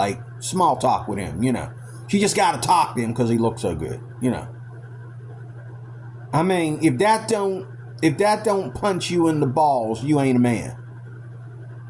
small talk with him, She just got to talk to him because he looks so good, I mean, if that don't punch you in the balls, you ain't a man.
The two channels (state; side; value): identical; both; correlation 1.00